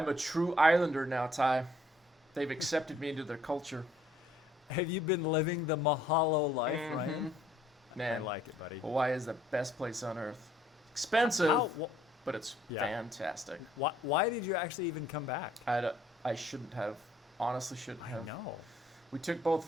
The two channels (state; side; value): normal; both; correlation 0.63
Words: a true Islander now, Ty. They've accepted me into their culture. Have you been living the Mahalo life, Ryan? Man, I like it, buddy. Hawaii is the best place on earth. Expensive, but it's fantastic. Why did you actually even come back? I shouldn't have. Honestly, shouldn't have. I know. We took both of